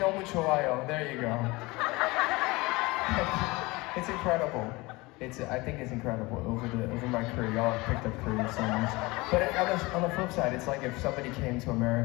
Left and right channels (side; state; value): right; quieter; 22.9 dB